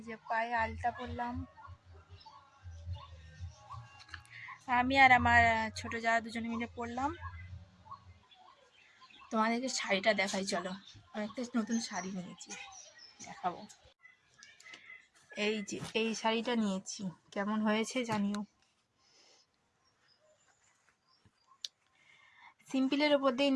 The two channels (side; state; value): both; identical; correlation 1.00